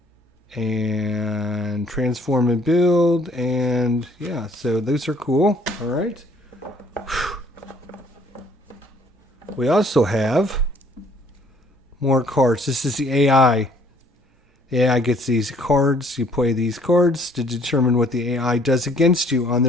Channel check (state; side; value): normal; both; correlation 0.60